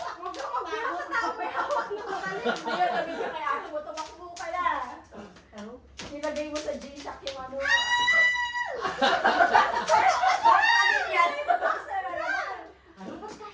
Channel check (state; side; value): identical; both; correlation 1.00